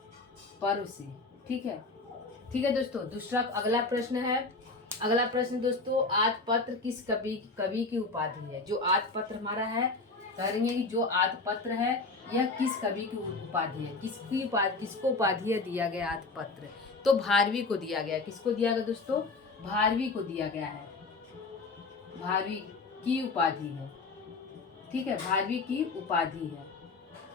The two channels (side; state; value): right; quieter; 3.6 dB